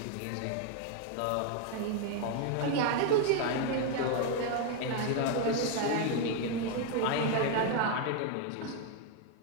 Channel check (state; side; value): different; both; correlation 0.00